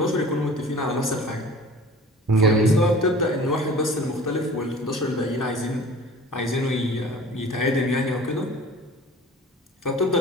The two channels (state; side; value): normal; both; correlation 0.44